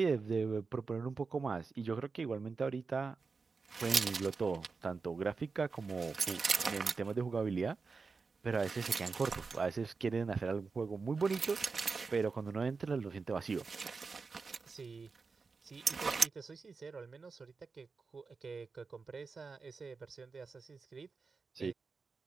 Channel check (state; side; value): quieter; left; 4.6 dB